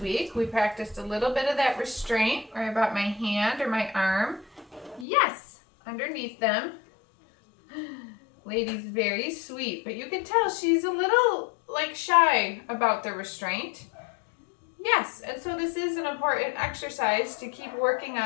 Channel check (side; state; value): right; drops out; at 5.1 s